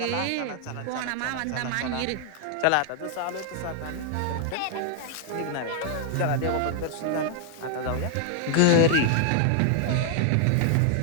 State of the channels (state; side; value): different; both; correlation 0.00